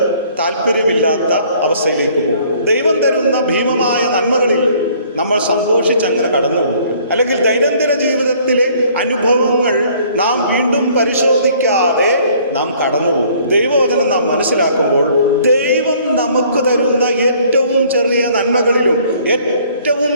താല്പര്യമില്ലാത്ത അവസ്ഥയിലേക്ക് പോകും. ദൈവം തരുന്ന ഭീമമായ നന്മകളിൽ നമ്മൾ സന്തോഷിച്ചങ്ങനെ കടന്നു പോകും. അല്ലെങ്കിൽ ദൈനംദിന ജീവിതത്തിലെ അനുഭവങ്ങൾ നാം വീണ്ടും പരിശോധിക്കാതെ നാം കടന്നുപോകും. ദൈവവചനം നാം മനസ്സിലാക്കുമ്പോൾ ദൈവം നമുക്ക് തരുന്ന ഏറ്റവും ചെറിയ നന്മകളിലും ഏറ്റവും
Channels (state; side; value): inverted; both; correlation -0.58